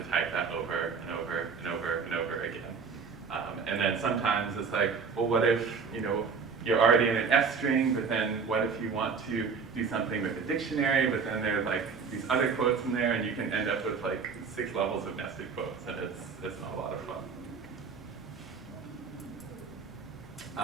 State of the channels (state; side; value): quieter; left; 5.5 dB